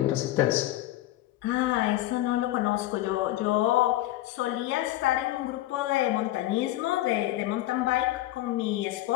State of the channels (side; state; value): right; quieter; 15.3 dB